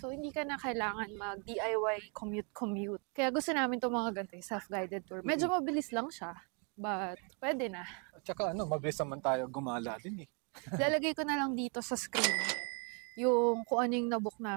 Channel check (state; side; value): quieter; left; 36.9 dB